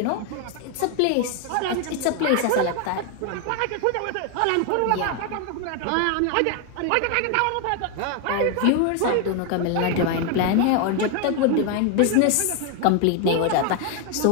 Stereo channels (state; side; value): different; both; correlation 0.01